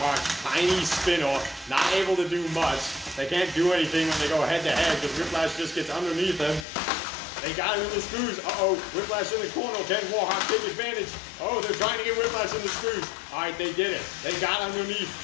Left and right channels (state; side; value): drops out; right; at 6.7 s